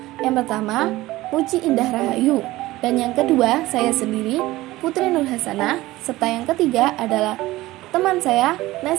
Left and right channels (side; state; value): left; quieter; 17.8 dB